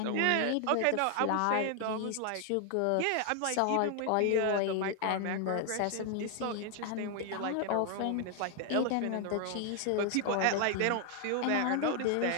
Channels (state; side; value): different; both; correlation 0.00